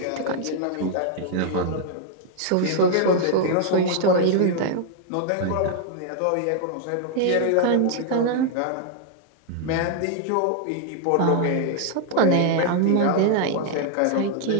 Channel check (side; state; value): both; different; correlation 0.00